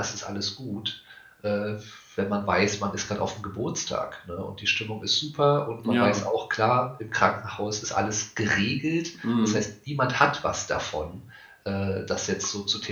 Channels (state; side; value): identical; both; correlation 1.00